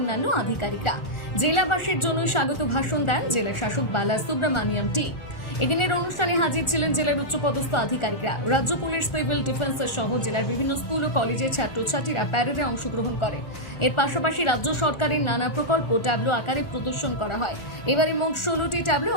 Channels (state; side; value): late; right; 1.4 ms